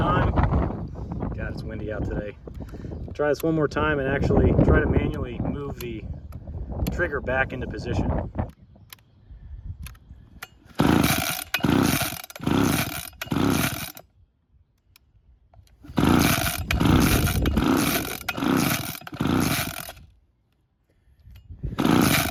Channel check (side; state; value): both; identical; correlation 1.00